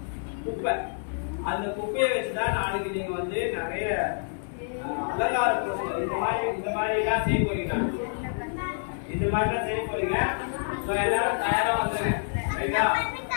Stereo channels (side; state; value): right; silent; digital silence